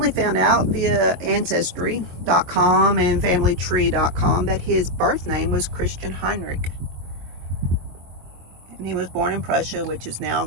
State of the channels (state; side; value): late; left; 23 ms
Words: found out via Ancestry.com and FamilyTree.com that his birth name was Christian Heinrich. And he was born in Prussia, which is now